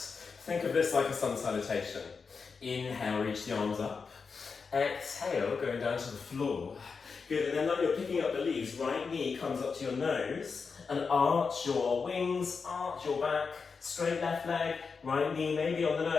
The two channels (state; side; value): quieter; right; 5.2 dB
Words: of this like a sun salutation. Inhale, reach the arms up. Exhale, going down to the floor. Good, and then like you're picking up the leaves, right knee comes up to your nose, and arch your wings, arch your back, straight left leg, right knee maybe on the